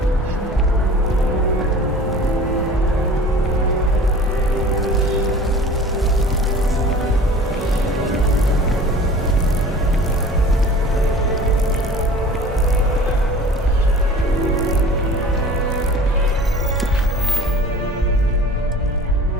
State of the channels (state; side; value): normal; both; correlation 0.43